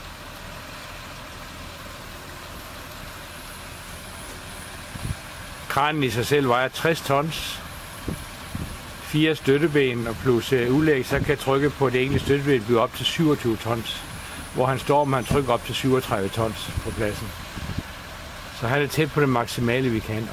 Kranen i sig selv vejer 60 tons, 4 støtteben og plus udlæg, så kan trykket på det enkelte støtteben blive op til 27 tons, hvor han står med han trykker op til 37 tons på pladsen. Så han er tæt på det maksimale, vi kan.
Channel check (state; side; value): identical; both; correlation 1.00